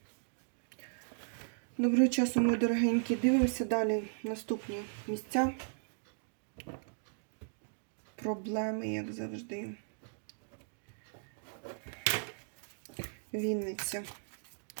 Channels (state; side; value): silent; left; digital silence